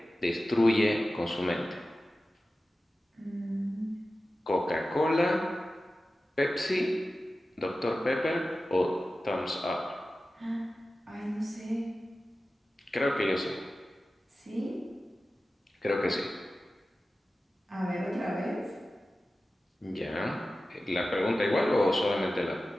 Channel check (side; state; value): both; normal; correlation 0.95